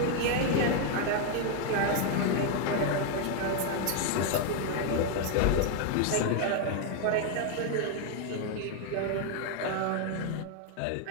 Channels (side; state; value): both; different; correlation 0.01